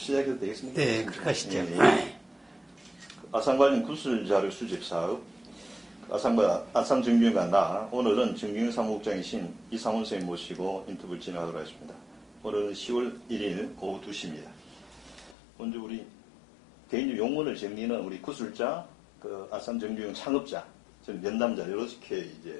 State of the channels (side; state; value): right; drops out; at 15.4 s